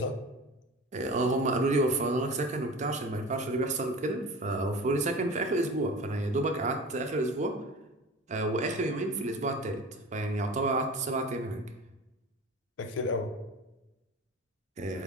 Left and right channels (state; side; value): normal; both; correlation 0.35